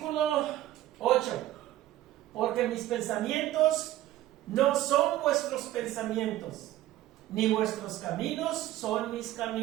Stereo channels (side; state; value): left; quieter; 14.4 dB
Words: 8. Porque mis pensamientos no son vuestros pensamientos, ni vuestros caminos son mis